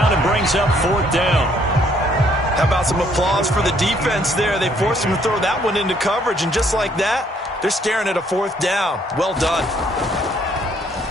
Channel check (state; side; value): normal; both; correlation 0.66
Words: and brings up fourth down. How about some applause for the defense there? They forced him to throw that one into coverage, and just like that, they're staring at a fourth down. Well done.